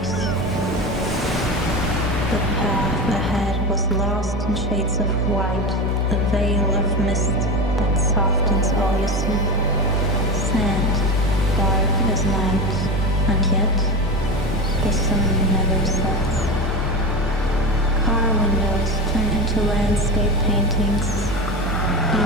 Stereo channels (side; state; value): both; normal; correlation 0.22